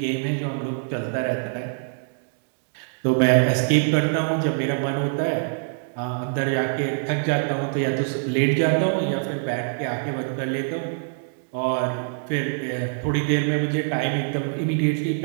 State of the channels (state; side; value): silent; left; digital silence